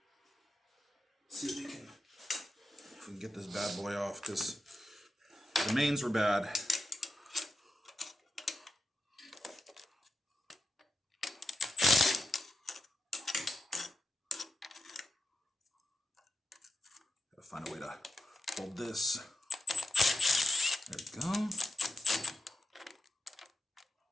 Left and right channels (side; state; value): both; normal; correlation 0.87